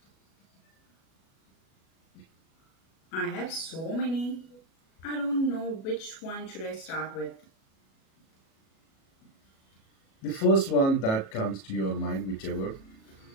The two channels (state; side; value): late; right; 37 ms